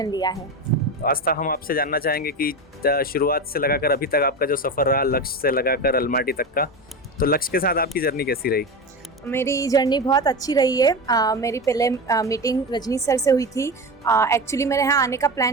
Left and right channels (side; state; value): both; normal; correlation 0.22